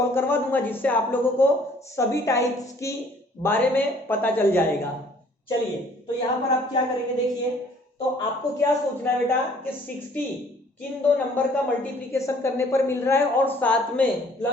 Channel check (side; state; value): both; normal; correlation 0.57